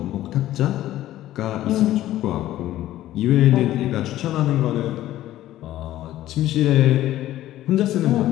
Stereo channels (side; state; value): right; quieter; 14.1 dB